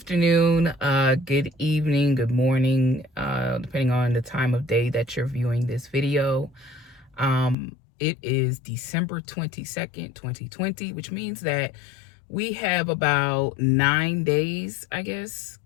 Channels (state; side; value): drops out; right; at 7.6 s